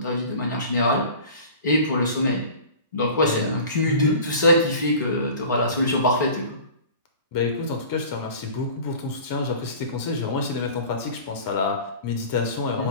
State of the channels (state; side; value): inverted; both; correlation -0.41